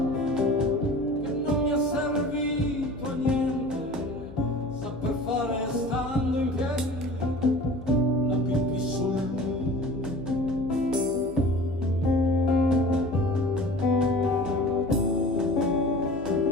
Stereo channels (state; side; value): noise; left; hum, 16 dB below the sound